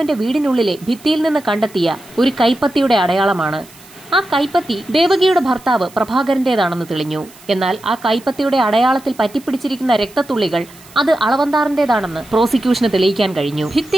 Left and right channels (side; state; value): right; noise; hiss, 23 dB below the sound